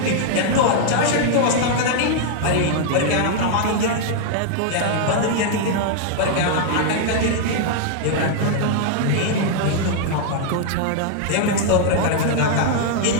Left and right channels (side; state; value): both; different; correlation 0.00